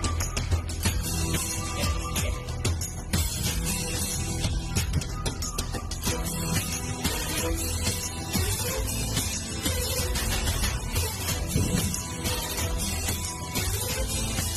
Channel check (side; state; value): both; identical; correlation 1.00